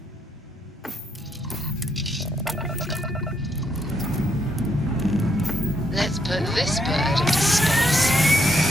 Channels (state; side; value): normal; both; correlation 0.76